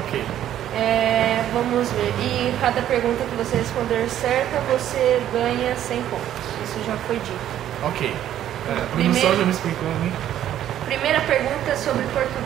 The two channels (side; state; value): left; quieter; 11.4 dB